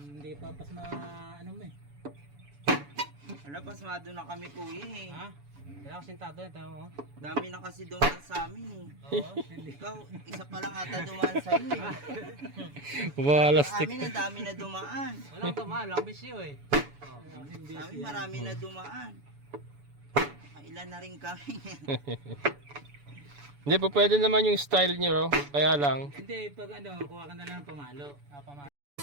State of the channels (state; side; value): late; left; 7.0 ms